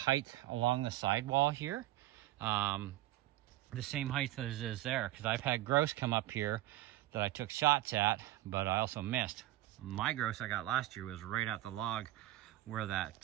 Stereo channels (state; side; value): quieter; left; 15.8 dB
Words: along the sidewall here. The same height as is there, because I've had grouse come up here that I took shots at, but I also missed. My grouse I got last year was right at the log where